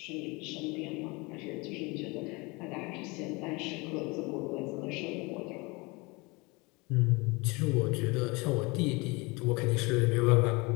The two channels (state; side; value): quieter; right; 26.1 dB